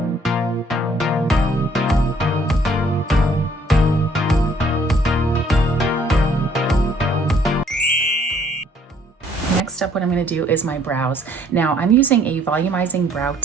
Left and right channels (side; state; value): both; normal; correlation 0.62